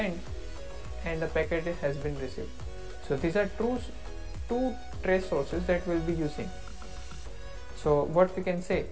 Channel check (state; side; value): identical; both; correlation 1.00